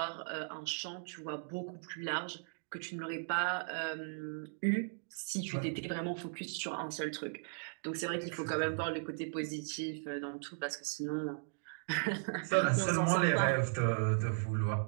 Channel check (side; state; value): left; silent; digital silence